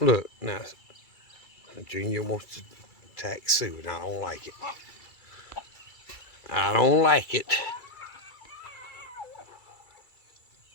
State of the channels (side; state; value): right; late; 2.3 ms